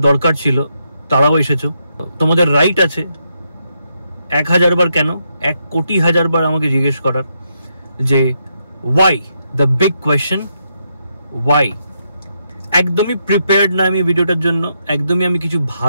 দরকার ছিল তারাও এসেছো। তোমাদের রাইট আছে 1000 বার কেন, 1 কোটি হাজার বার আমাকে জিজ্ঞেস করার যে why, the big question why. একদমই প্রিপেয়ার্ড না আমি ভিডিওটার জন্য, একদমই আমি কিছু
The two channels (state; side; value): inverted; both; correlation -0.80